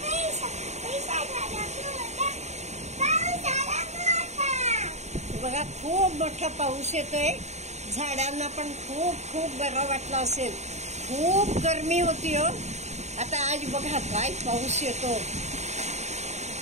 बघा खूप मोठा पाऊस येतोय. झाडांना पण खूप खूप बरं वाटलं असेल. खूप गरमी होती हो. आता आज बघा काय पाऊस येतो.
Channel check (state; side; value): late; left; 0.33 ms